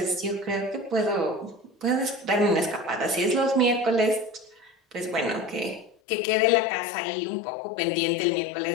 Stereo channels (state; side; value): drops out; right; at 6.0 s